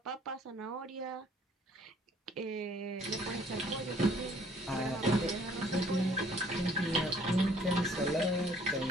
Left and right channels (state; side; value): normal; both; correlation 0.57